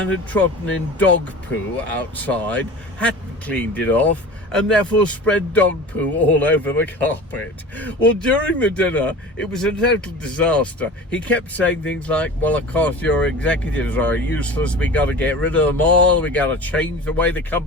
had trodden in dog poo outside, hadn't cleaned it off, and therefore spread dog poo all over the carpet. Well, during the dinner, it was a total disaster. He kept saying things like, well, of course, your executives are useless. We got to get rid of them all. We got to change the way the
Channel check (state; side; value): normal; both; correlation 0.37